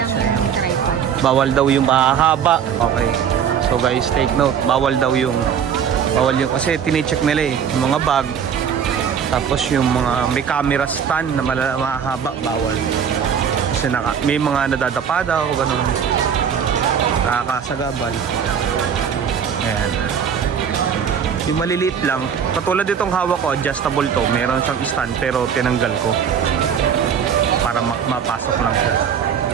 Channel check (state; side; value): quieter; left; 7.7 dB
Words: siya. yung tripod. Bawal daw yung mahaba. Okay. So guys, take note. Bawal yung kasi tine-check nila eh, yung mga bag. Tapos yung mga may camera stand na mahaba, bawal. Kasi may mga nadadapa daw, ganun. Nakakasagabal. Ayan. Yung maliliit lang, katulad itong hawak ko, adjustable to. Meron siyang stand pero tinanggal ko para mapasok lang siya.